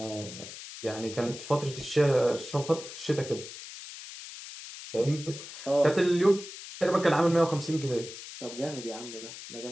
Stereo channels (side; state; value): left; noise; hiss, 12 dB below the sound